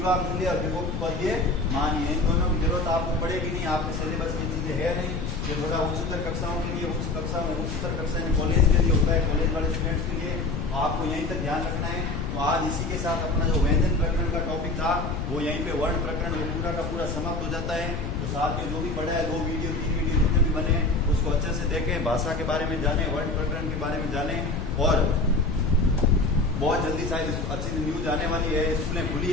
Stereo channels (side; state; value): left; noise; rumble, 3 dB below the sound